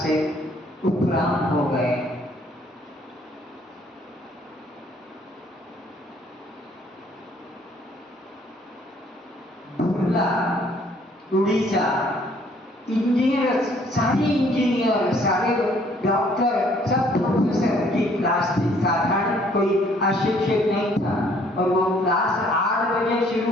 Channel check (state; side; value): normal; both; correlation 0.62